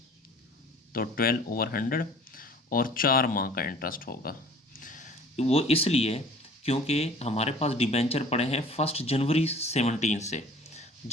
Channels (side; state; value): both; normal; correlation 0.48